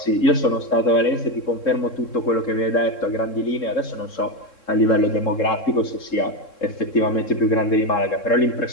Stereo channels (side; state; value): right; late; 3.7 ms